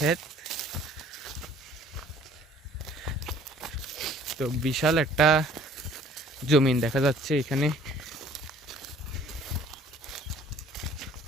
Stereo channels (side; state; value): both; normal; correlation 0.55